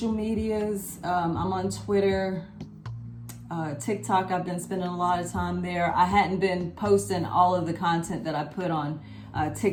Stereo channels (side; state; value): both; identical; correlation 1.00